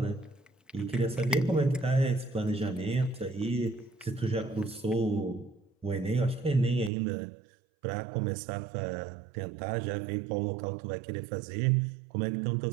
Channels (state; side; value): drops out; left; at 6.9 s